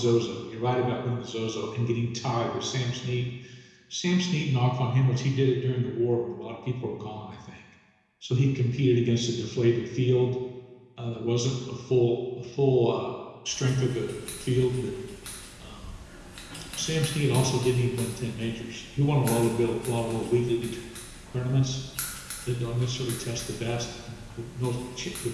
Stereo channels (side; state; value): both; identical; correlation 1.00